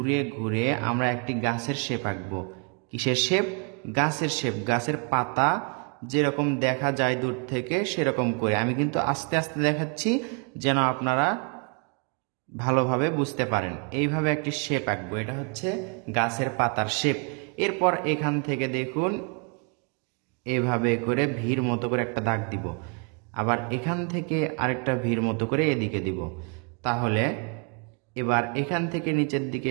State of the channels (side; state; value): left; quieter; 37.4 dB